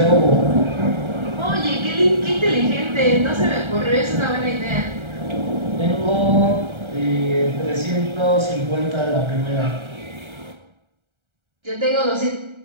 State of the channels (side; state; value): left; late; 1.3 ms